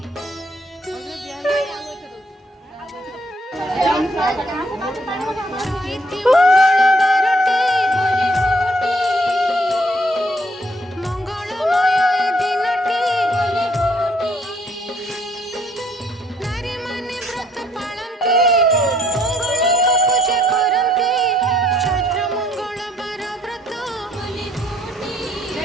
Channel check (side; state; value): both; normal; correlation 0.66